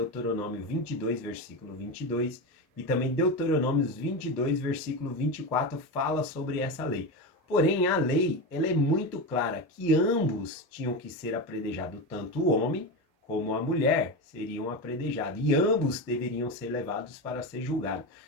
22, versículo 22, e também Deuteronômio 22, versículo 24, fala sobre essa lei. Porém, a lei ela é muito clara que ambos tinham que ser apredrejados, tanto o homem como a mulher seriam apredrejados, e ambos deveriam ser levados para ser julgados.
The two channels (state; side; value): normal; both; correlation 0.18